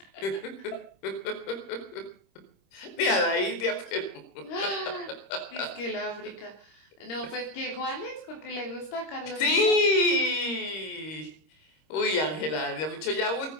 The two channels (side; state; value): right; late; 26 ms